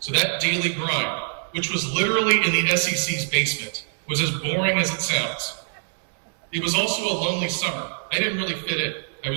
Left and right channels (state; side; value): silent; left; digital silence